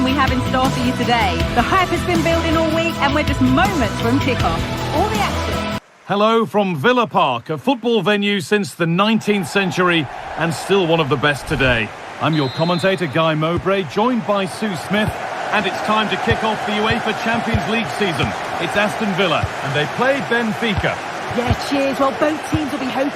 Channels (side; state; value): both; identical; correlation 1.00